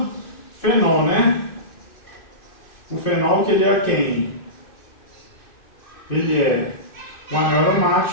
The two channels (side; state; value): right; late; 2.6 ms